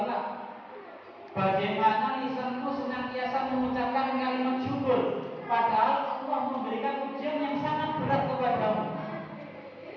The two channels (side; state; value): both; identical; correlation 1.00